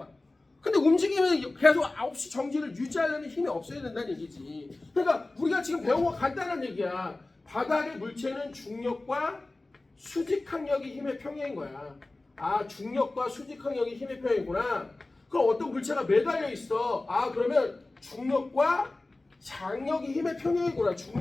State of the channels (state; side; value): quieter; right; 3.0 dB